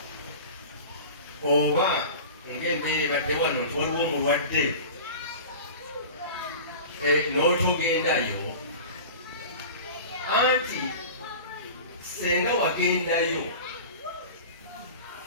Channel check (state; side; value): inverted; both; correlation -0.35